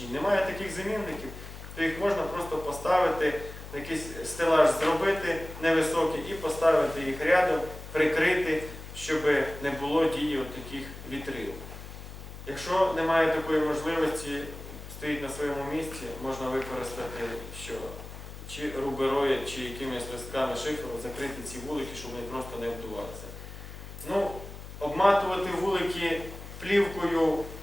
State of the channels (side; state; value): left; noise; hum, 13 dB below the sound